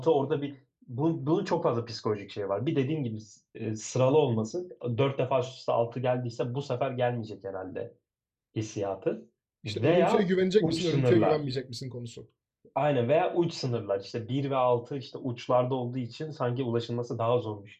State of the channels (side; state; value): both; identical; correlation 1.00